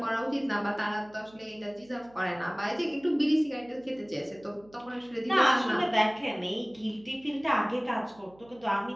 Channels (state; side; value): noise; right; hum, 26 dB below the sound